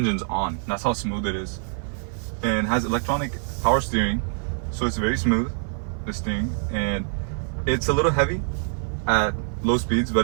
on. That's how smooth it is. And has electronic power steering, so it's very smooth, the steering, and it's a little heavy at low speeds, but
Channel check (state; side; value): silent; left; 57 dB below the other